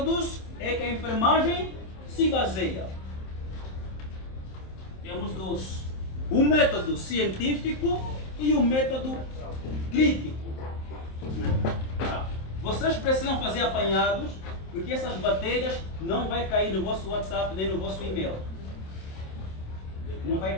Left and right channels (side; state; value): right; late; 27 ms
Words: é que a enfermagem se baseia? Temos dois. O método científico e o método crítico. Vocês precisam fazer apanhados, porque essas matérias não vai cair no vosso WhatsApp nem no vosso e-mail. Não vai